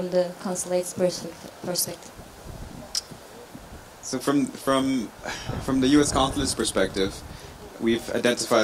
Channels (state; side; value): identical; both; correlation 1.00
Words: the consulate's perspective? So from the U.S. consulate's perspective, we've